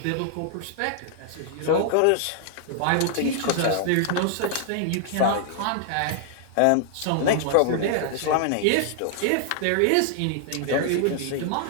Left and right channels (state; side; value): different; both; correlation -0.01